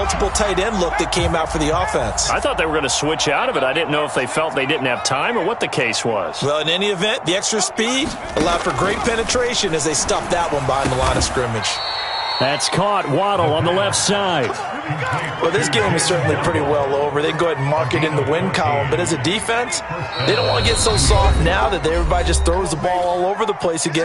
tight end look that came out for the offense. I thought they were going to switch out of it. I didn't know if they felt they didn't have time or what the case was. Well, in any event, the extra speed allowed for great penetration as they stuffed that one behind the line of scrimmage. That's caught. Waddle on the left side. Well, this game is certainly pretty well over. They can go ahead and mark it in the win column. But as a defense, they don't want to get so soft now that everybody just throws the ball all over the place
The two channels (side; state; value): both; identical; correlation 1.00